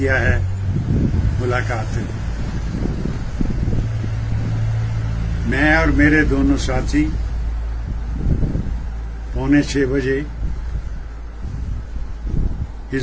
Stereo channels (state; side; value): identical; both; correlation 1.00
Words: है मुलाकात। मैं और मेरे दोनों साथी 5:45 बजे